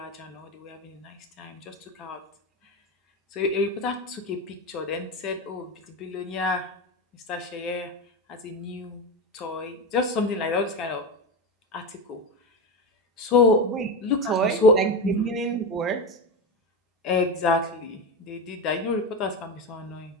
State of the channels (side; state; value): both; normal; correlation 0.18